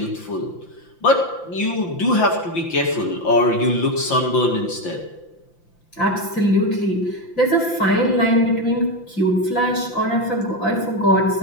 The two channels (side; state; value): right; late; 5.8 ms